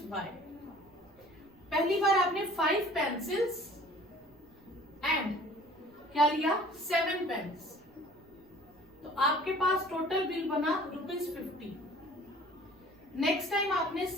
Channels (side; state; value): right; noise; rumble, 29 dB below the sound